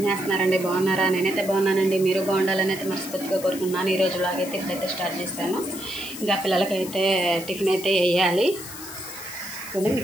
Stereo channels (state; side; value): noise; left; hiss, 12 dB below the sound